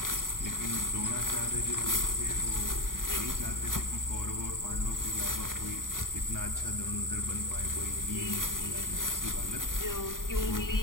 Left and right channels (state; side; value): late; right; 0.90 ms